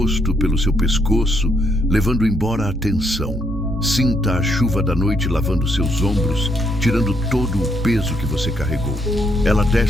pelo seu pescoço, levando embora a tensão. Sinta a chuva da noite lavando seus ombros, tirando todo o peso que você carregou. Ela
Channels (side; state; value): right; noise; hum, 8 dB below the sound